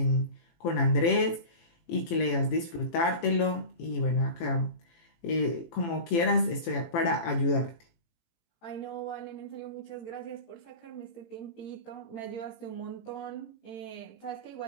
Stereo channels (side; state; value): right; late; 18 ms